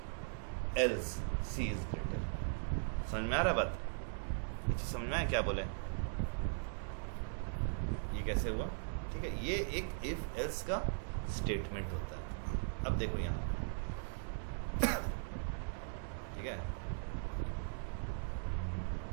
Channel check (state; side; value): silent; left; digital silence